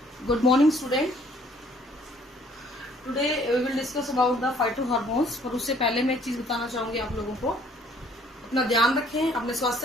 Good morning, student. Today we will discuss about the phytohormones. पर उससे पहले मैं एक चीज बताना चाहूंगी आप लोगों को, अपना ध्यान रखें, अपने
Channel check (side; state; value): both; normal; correlation 0.60